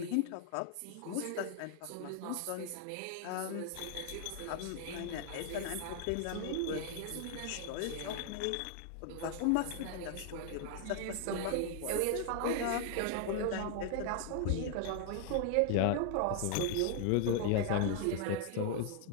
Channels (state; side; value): different; both; correlation 0.00